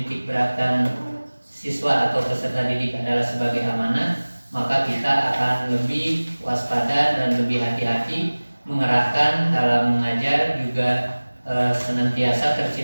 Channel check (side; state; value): both; inverted; correlation -1.00